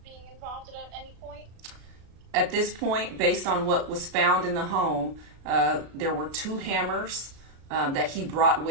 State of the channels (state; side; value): late; left; 36 ms